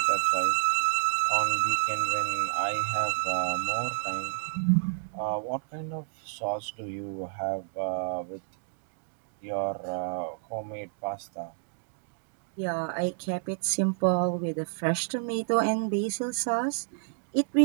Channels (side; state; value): left; silent; digital silence